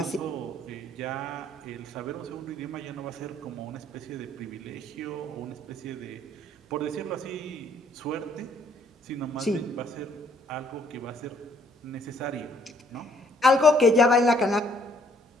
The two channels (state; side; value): normal; both; correlation 0.64